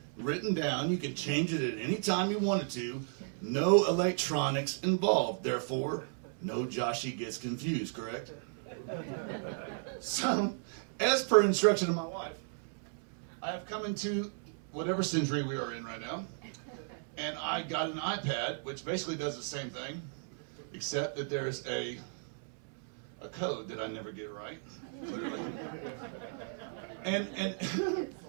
written down. You could change it at any time you wanted to. No electronics involved. Therefore, no Joshy gets confused, correct? So, as per instruction of my wife, I have come into whatever century we are in right now. And I got an iPad, which basically does the same thing, except that there's a code that I never get right, clearly. And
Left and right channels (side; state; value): left; silent; 55 dB below the other